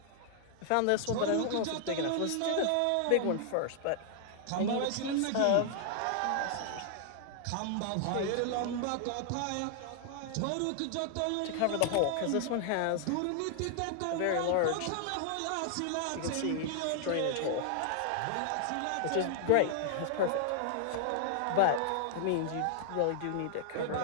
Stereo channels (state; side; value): different; both; correlation 0.00